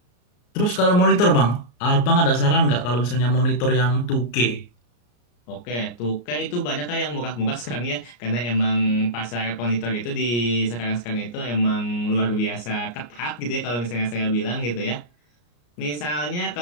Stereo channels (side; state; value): right; late; 34 ms